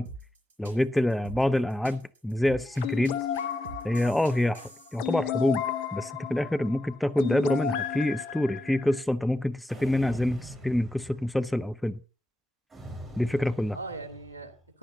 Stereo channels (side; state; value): both; normal; correlation 0.88